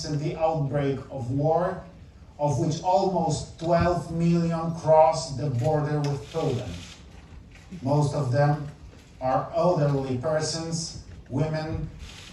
the outbreak of war, of which almost 12 million crossed the border with Poland. Most of them are elderly persons, women,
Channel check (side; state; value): both; identical; correlation 1.00